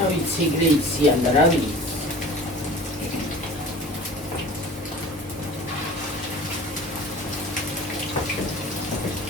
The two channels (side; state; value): both; normal; correlation 0.42